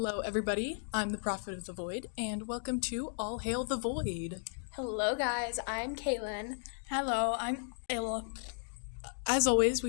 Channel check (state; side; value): silent; right; digital silence